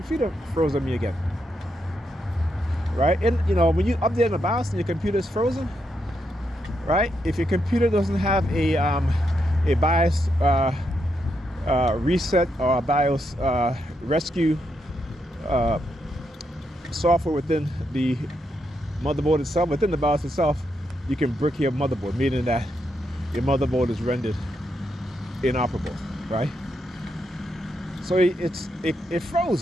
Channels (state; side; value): normal; both; correlation 0.81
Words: froze on me again. Right? And you know, when you update the BIOS and your computer is frozen, right? If your computer doesn't have a BIOS reset or a BIOS rescue software within the motherboard itself, within the BIOS itself, you can brick your motherboard, meaning that your motherboard is rendered inoperable, right? So it